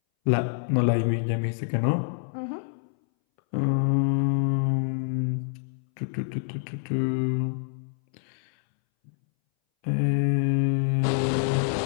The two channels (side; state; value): right; silent; 61 dB below the other